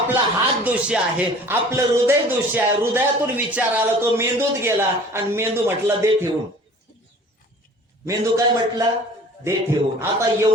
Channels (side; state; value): both; normal; correlation 0.47